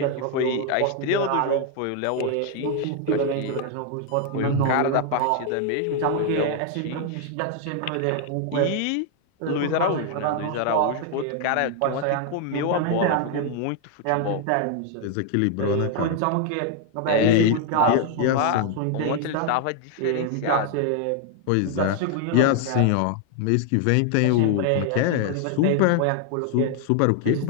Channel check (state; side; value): different; both; correlation 0.00